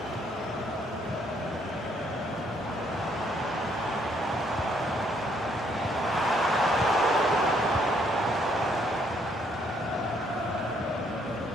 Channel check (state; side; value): normal; both; correlation 0.68